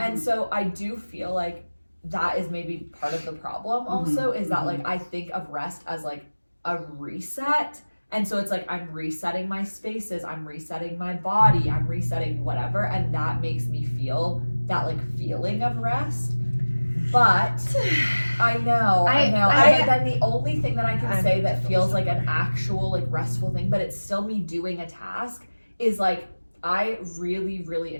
And so I do feel like that is maybe part of the problem also, is that like I think of rest as like a reset. And so it's like, I'm resetting my spaces, I'm resetting my body, I'm resetting whatever. And that makes me feel that like feeling of rest. But I know. But then the only thing that I can say that feels like an actual like restful thing, but it's still me doing a task, is like, I really, really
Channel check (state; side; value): inverted; both; correlation -1.00